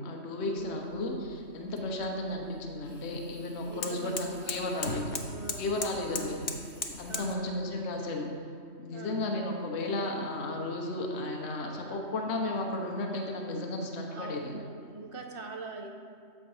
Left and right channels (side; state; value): right; late; 3.4 ms